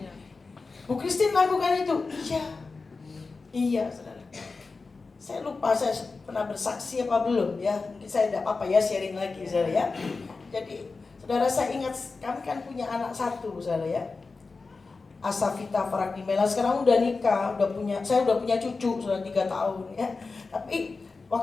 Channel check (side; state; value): right; quieter; 4.1 dB